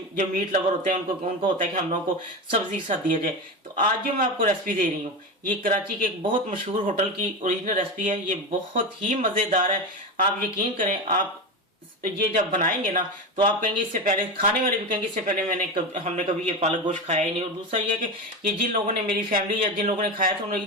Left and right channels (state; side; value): normal; both; correlation 0.20